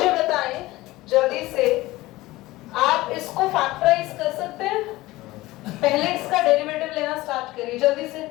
बताएं जल्दी से, आप इसको फैक्टराइज कर सकते हैं? पहले इसका डेरिवेटिव लेना स्टार्ट करिए जल्दी से.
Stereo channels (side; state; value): right; quieter; 18.7 dB